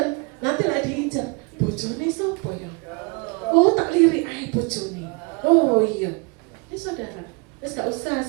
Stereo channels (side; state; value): left; quieter; 31.2 dB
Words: nanti lah diincar. Bojone sapa ya? Oh, tak lirik ae bojone. Oh iya, ini saudara, gak usah